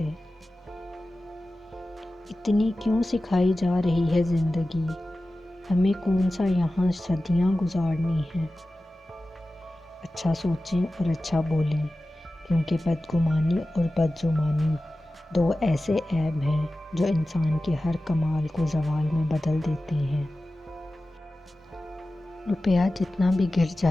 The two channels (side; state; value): both; normal; correlation 0.95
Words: اتنی کیوں سکھائی جا رہی ہے زندگی، ہمیں کون سا یہاں صدیاں گزارنی ہیں۔ اچھا سوچیں اور اچھا بولیں، کیونکہ بدگمانی اور بدزبانی دو ایسے عیب ہیں جو انسان کے ہر کمال کو زوال میں بدل دیتے ہیں۔ روپیہ جتنا بھی گر